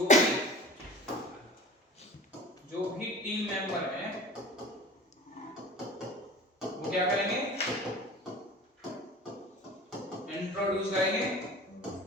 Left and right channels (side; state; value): both; normal; correlation 0.39